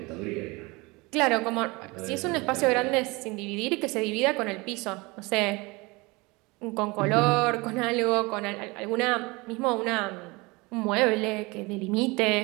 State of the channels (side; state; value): left; quieter; 24.9 dB